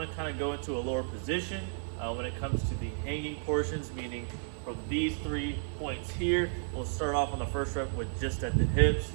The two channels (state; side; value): silent; left; digital silence